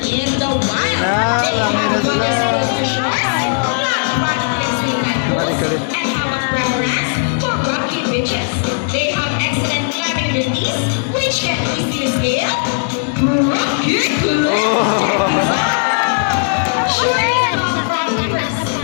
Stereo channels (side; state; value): right; silent; 57 dB below the other